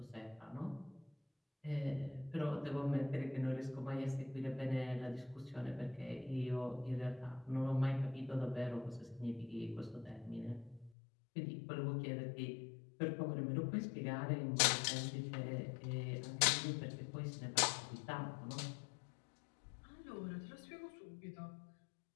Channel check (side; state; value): right; drops out; at 10.9 s